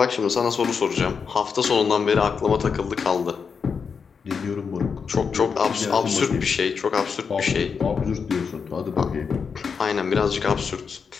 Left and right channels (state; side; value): quieter; right; 5.9 dB